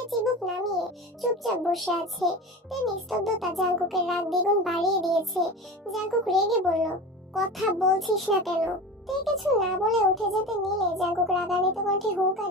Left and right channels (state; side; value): normal; both; correlation 0.31